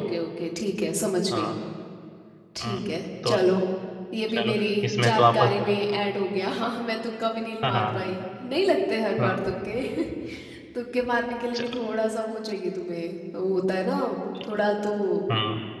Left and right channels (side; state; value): both; identical; correlation 1.00